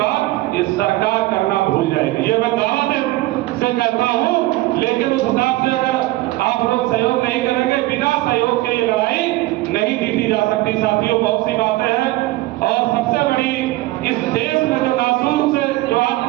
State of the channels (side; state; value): left; quieter; 18.5 dB